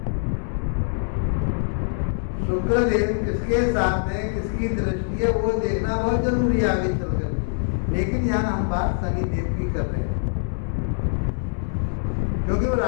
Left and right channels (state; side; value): silent; right; 61 dB below the other